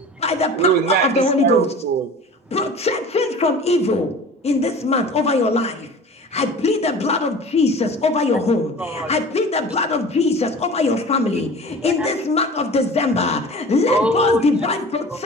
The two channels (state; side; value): normal; both; correlation 0.40